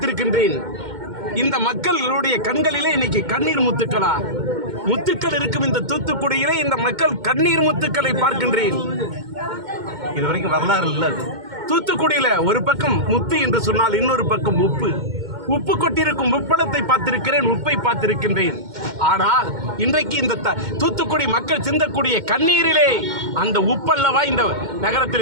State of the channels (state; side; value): late; left; 2.1 ms